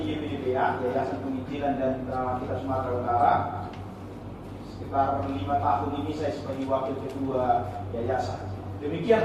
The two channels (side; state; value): both; identical; correlation 1.00